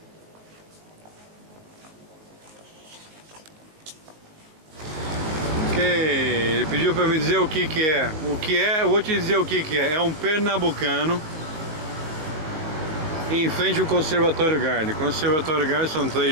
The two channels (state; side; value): late; left; 19 ms